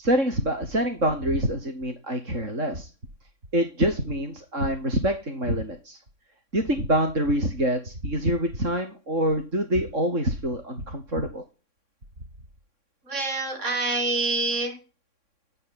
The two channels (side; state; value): left; late; 3.6 ms